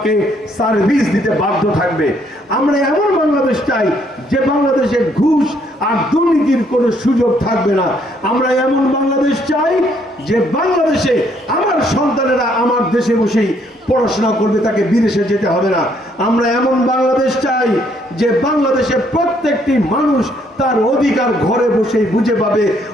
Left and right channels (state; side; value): normal; both; correlation 0.68